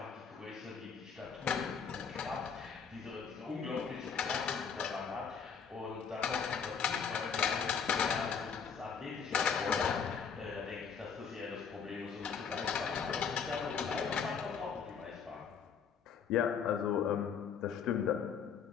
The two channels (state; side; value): quieter; right; 6.6 dB